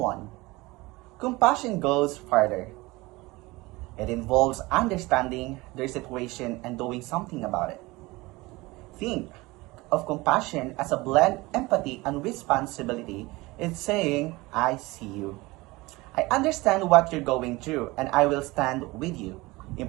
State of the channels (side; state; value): left; quieter; 21.9 dB